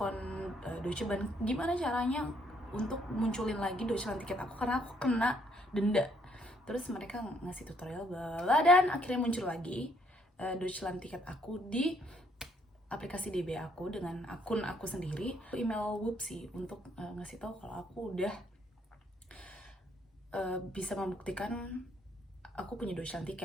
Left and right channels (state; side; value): normal; both; correlation 0.68